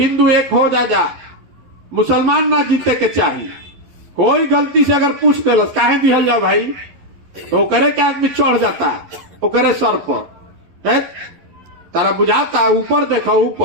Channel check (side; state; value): left; late; 11 ms